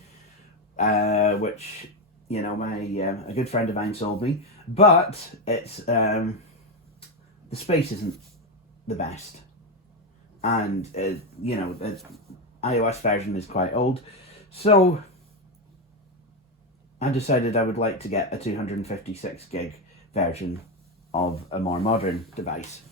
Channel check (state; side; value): normal; both; correlation 0.10